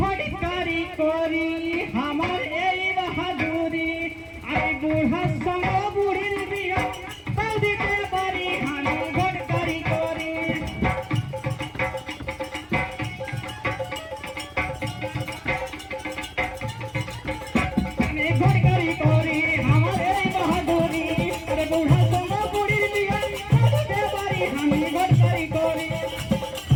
করি আমার এই বাহাদুরি আমি বুড়ার সঙ্গে বুড়ির বিয়া তাও দিতে পারি আমি ঘটকারি করি আমি ঘটকারি করি আমার এই বাহাদুরি আরে বুড়ার সঙ্গে বুড়ির বিয়া তাও দিতে পারি আমি ঘটকারি করি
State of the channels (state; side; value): identical; both; correlation 1.00